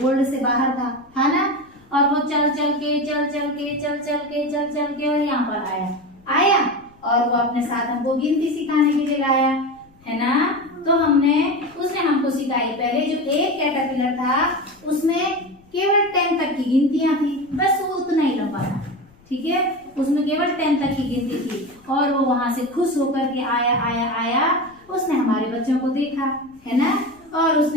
बोर्ड से बाहर था ना, और वो चल चल के और यहाँ पर आया और वो अपने साथ हमको गिनती सिखाने के लिए आया, है ना। तो उसने हमको सिखाई। पहले जो एक कैटरपिलर था उसमें केवल 10 तक की गिनतियां थी, बस वो उतना ही लंबा था। ठीक है, उसमें केवल 10 तक की गिनती थी और वो वहां से खुश होकर के आया। उसने हमारे बच्चों को देखा, है ना, और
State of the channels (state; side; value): noise; left; rumble, 29 dB below the sound